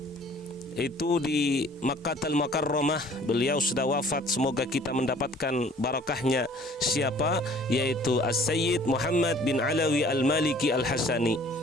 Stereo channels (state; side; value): normal; both; correlation 0.53